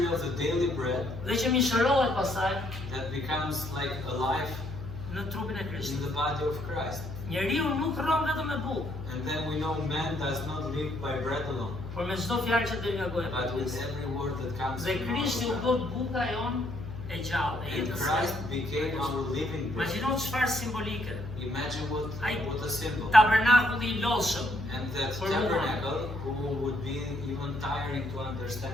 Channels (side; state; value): left; noise; hum, 9 dB below the sound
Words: of the daily bread dhe që mishërohet pastaj that becomes like alive në trupin e in Krishtit. the body of Christ. Njeriu nuk rron vetëm me bukë, And then we know man does not live by bread alone, por me çdo fjalë që del nga goja e but with Perëndisë. every word that comes Dhe from our Krishti u mouth. bë buka jon e gjallë, e And jetës. Christ became our living bread. Imagjino çfarë simbolike. Imagine what a symbol. Tabernakulli I lodhshëm, And that For tabernacle, who would be even tiring to